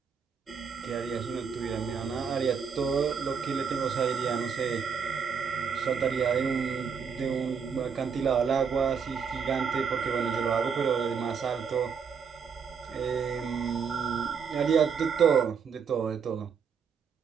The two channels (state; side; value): quieter; left; 6.4 dB